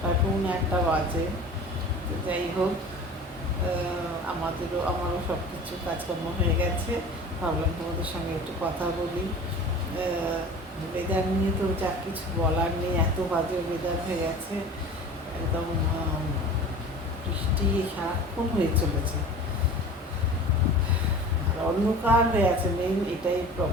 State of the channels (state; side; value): normal; both; correlation 0.39